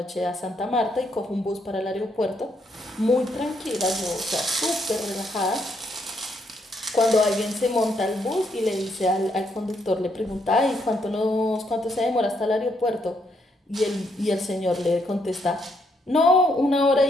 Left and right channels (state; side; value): normal; both; correlation 0.75